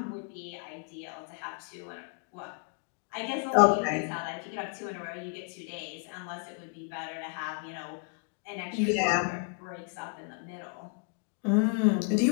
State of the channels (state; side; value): quieter; right; 38.4 dB